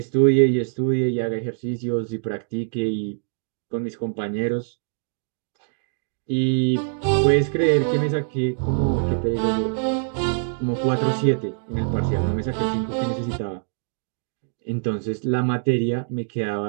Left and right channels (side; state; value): left; silent; digital silence